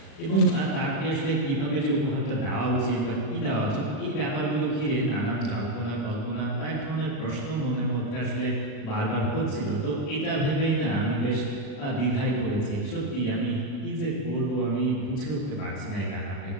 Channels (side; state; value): right; late; 37 ms